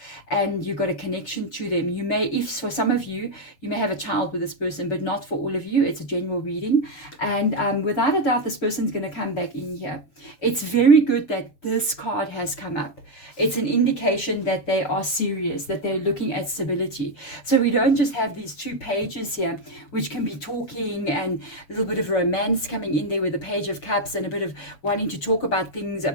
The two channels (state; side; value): late; right; 7.1 ms